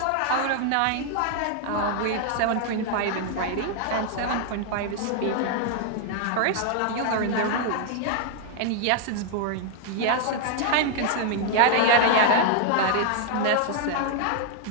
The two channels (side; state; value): both; different; correlation 0.00